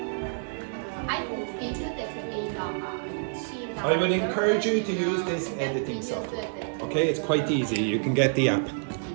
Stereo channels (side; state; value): left; silent; digital silence